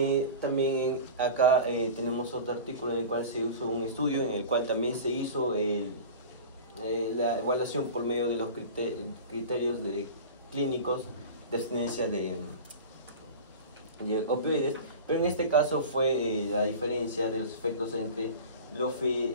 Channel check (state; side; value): inverted; both; correlation -0.34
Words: También acá tenemos otro artículo en el cual se hizo un estudio, en el cual también se hizo la evaluación por medio de los criterios clínicos de abstinencia de opioides, pero en este caso fue la diferencia de los efectos entre